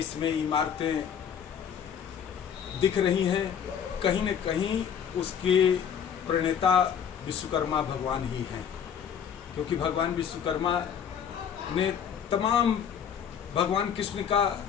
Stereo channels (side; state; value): right; quieter; 8.1 dB